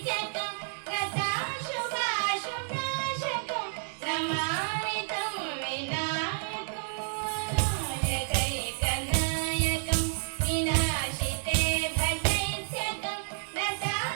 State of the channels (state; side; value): silent; left; digital silence